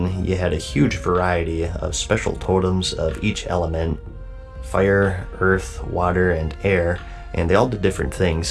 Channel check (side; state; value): both; identical; correlation 1.00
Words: you had a huge variety of special totems of each element: fire, earth, water, and air, and they all did different